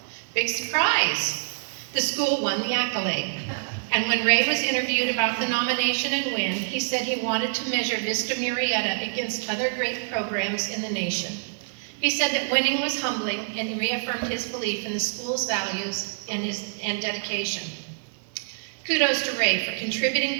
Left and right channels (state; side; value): silent; left; digital silence